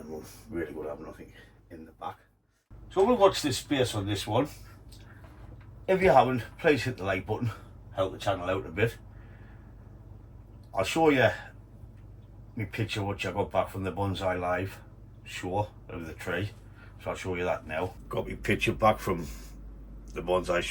we'll really will have nothing in the back. So we'll watch this space on this one. If you haven't, please hit the like button, help the channel out a bit. I'll show you my picture which I got back from the Bonsai Live show of the tree. So I'll show you that now. Got my picture back from the Bonsai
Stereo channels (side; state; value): both; identical; correlation 1.00